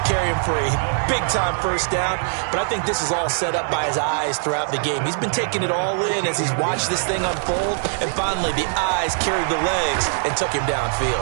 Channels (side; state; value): left; silent; digital silence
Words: him for a big-time 1st down. But I think this is all set up by his eyes throughout the game. He's been taking it all in as he's watched this thing unfold. And finally, the eyes carried the legs and took him